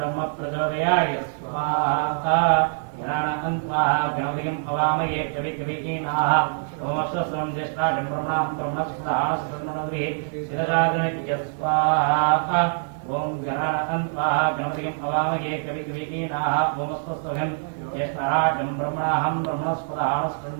प्रचोदयाय स्वाहा। गणानां स्वाहा गणपतिं हवामहे कविकवीनाः ओमस्वस्त्रं ज्येष्ठाजं ब्रह्मणां ब्रह्मस्पदानस्पन्ननद्भिः शिरजागणित्य स्वाहा। ओम गणानां स्वाहा गणपतिं हवामहे कविकवीनाः ओमस्वस्त्रं ज्येष्ठाजं ब्रह्मणां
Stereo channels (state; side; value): silent; left; digital silence